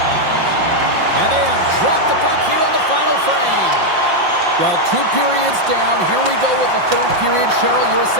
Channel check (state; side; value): late; left; 5.7 ms